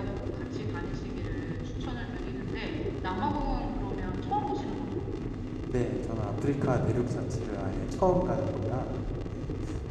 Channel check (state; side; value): identical; both; correlation 1.00